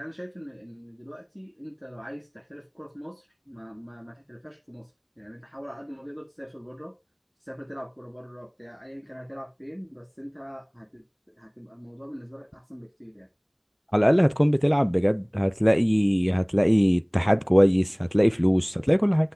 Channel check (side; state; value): both; identical; correlation 1.00